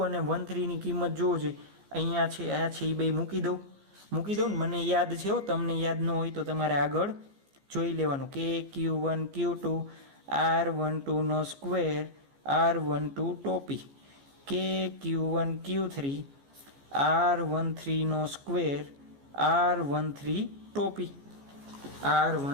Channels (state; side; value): late; left; 14 ms